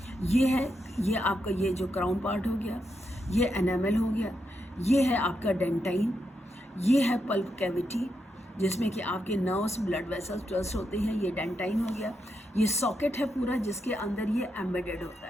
ये है, ये आपका ये जो क्राउन पार्ट हो गया, ये एनामल हो गया, ये है आपका डेंटाइन, ये है पल्प कैविटी जिसमें कि आपके नर्व्स, ब्लड वेसल्स ट्रस्ट होते हैं, ये डेंटाइन हो गया। ये सॉकेट है पूरा जिसके अंदर ये एम्बेडेड होता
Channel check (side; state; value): both; normal; correlation 0.83